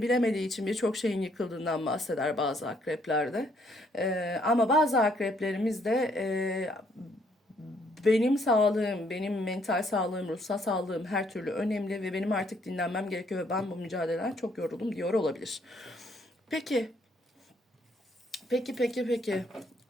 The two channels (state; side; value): normal; both; correlation 0.68